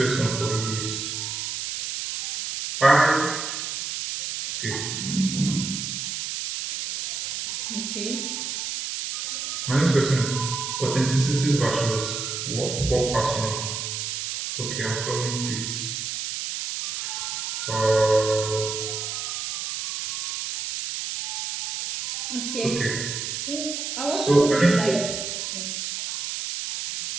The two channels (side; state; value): right; noise; hiss, 4 dB below the sound